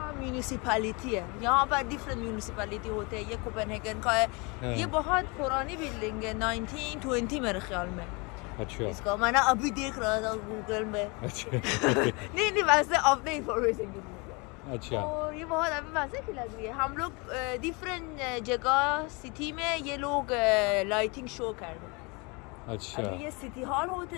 म्यूनिसिपैलिटी है। यहाँ पर डिफरेंट म्यूनिसिपैलिटी होते हैं। ये कोपेनहेगन का है। हाँ। ये बहुत पुरानी बिल्डिंग है, 1920 मेरे ख्याल में। अच्छा इसका मैंने अभी देख रहा था गूगल में। अच्छा नहीं वैसे अपने इंफॉर्मेशन के लिए। अच्छा और ये बहुत अभी वैसे की लग रही है। हम लोग डिफरेंट जगह सिटी में ये लोग लाइटिंग शो कर रहे हैं। अच्छा अभी ये सिटी हॉल होते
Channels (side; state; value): right; quieter; 29.1 dB